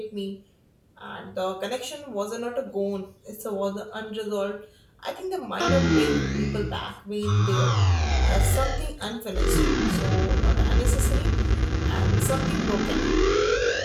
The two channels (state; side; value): identical; both; correlation 1.00